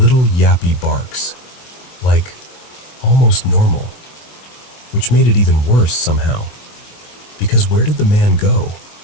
yappy barks. Like almost normal. Which made it even worse somehow. Because where did the man go?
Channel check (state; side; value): late; right; 24 ms